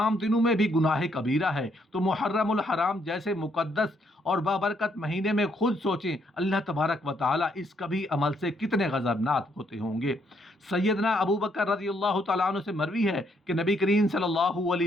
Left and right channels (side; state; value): both; normal; correlation 0.72